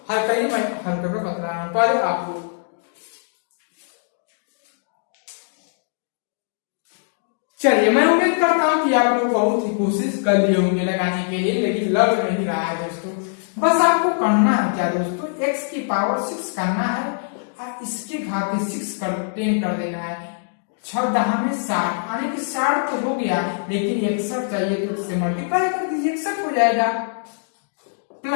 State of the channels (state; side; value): silent; right; digital silence